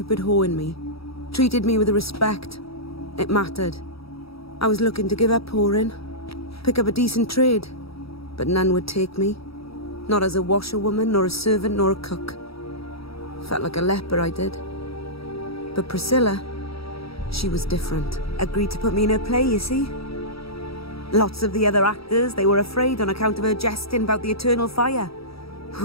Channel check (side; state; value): right; late; 0.76 ms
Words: whore in me. Treated me with respect. It mattered. I was looking to give up whoring. Pick up a decent trade. But none would take me. Not as a washerwoman, nor a servant, nor a cook. Felt like a leper, I did. But Priscilla, she was different. Agreed to put me in her play, you see. Lots of the other actors, they were afraid on account of her jesting about the eternal fire.